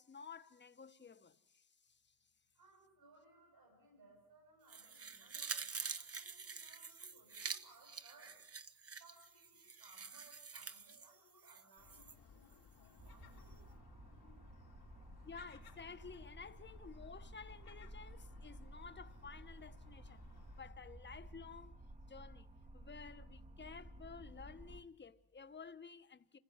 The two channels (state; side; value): normal; both; correlation 0.09